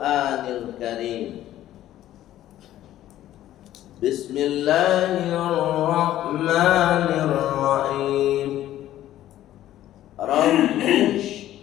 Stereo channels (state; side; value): quieter; right; 13.2 dB